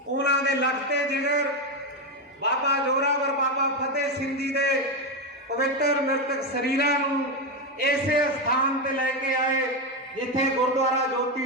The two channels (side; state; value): both; normal; correlation 0.10